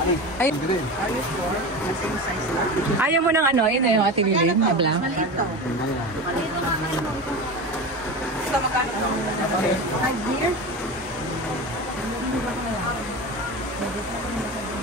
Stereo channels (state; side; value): normal; both; correlation 0.26